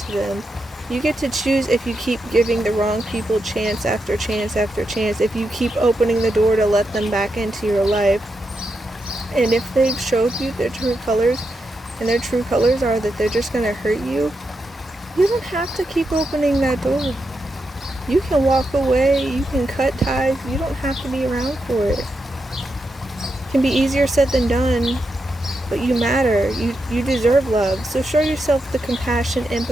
them. You get to choose if you keep giving the wrong people chance after chance after chance, if you keep opening the door to let them back into your life. And if they've showed you their true colors, and their true colors are that they're just going to hurt you, you don't have to keep opening that door. You can walk away, you can cut ties, you don't have to be around for it. It can be easier said than done, but you matter. You deserve love. So show yourself the compassion,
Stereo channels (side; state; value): both; normal; correlation 0.85